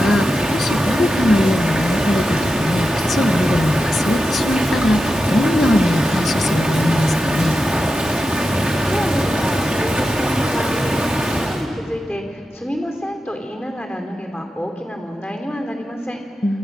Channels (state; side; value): normal; both; correlation 0.90